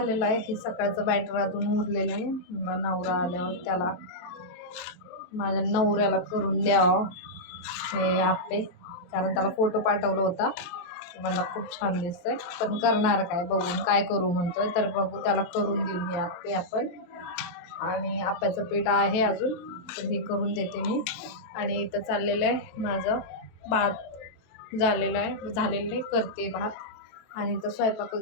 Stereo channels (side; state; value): right; late; 23 ms